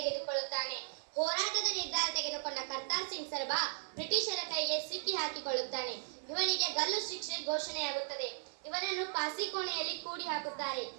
ಹೋರಾಟದ ನಿರ್ಧಾರ ತೆಗೆದುಕೊಂಡ ಕರ್ತಾರ್ ಸಿಂಗ್ ಸರ್ಬಾ ಬ್ರಿಟಿಷರ ಕೈಗೆ ಸಿಕ್ಕಿ ಹಾಕಿಕೊಳ್ಳುತ್ತಾನೆ. ಇವನಿಗೆ ಗಲ್ಲು ಶಿಕ್ಷೆ ಘೋಷಣೆಯಾಗುತ್ತದೆ. ಇವನನ್ನು ಪಾಸಿಕೋಣೆಯಲ್ಲಿ ಕೂಡಿ ಹಾಕುತ್ತಾರೆ.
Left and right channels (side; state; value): left; silent; 53 dB below the other